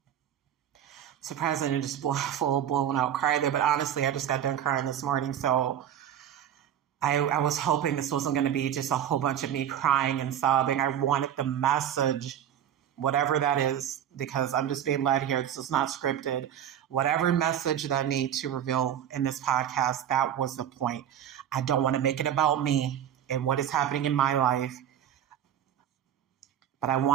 surprised I didn't just full blown out cry there, but honestly, I just got done crying this morning. So I was hoping this wasn't going to be just a whole bunch of me crying and sobbing. I wanted the message, whatever that is, because I'm just being led here. This is not scripted. Whatever message that I need to reveal in this podcast, that was the point. I don't want to make it about me and what is happening in my life, but I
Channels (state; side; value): quieter; left; 10.0 dB